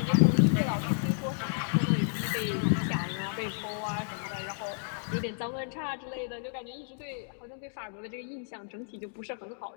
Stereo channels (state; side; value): silent; right; digital silence